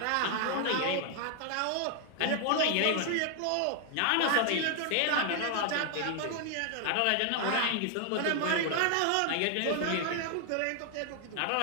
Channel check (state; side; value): different; both; correlation 0.00